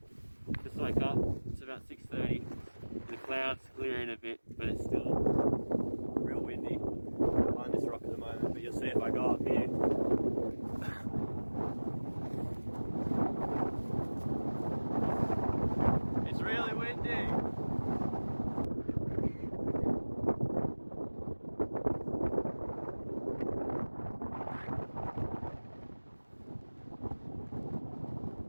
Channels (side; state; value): both; inverted; correlation -1.00